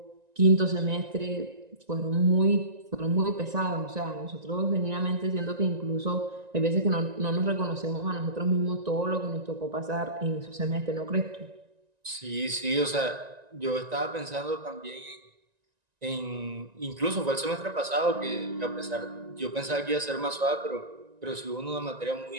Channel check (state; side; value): late; left; 1.9 ms